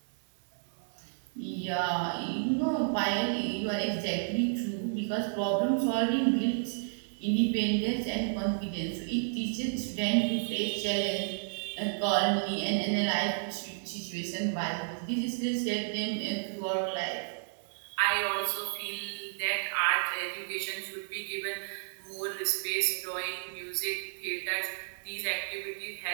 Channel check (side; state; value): left; silent; digital silence